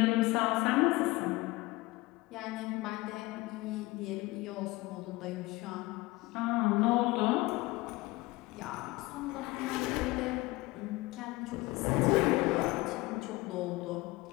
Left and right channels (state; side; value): quieter; right; 21.2 dB